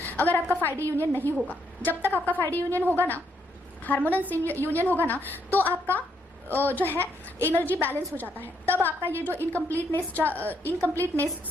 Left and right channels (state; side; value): normal; both; correlation 0.75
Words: अगर आपका 5D यूनियन नहीं होगा। जब तक आपका 5D यूनियन होगा ना, हार्मोनस यूनियन होगा ना, तो आपका जो है एनर्जी बैलेंस हो जाता है, तब आपका ये जो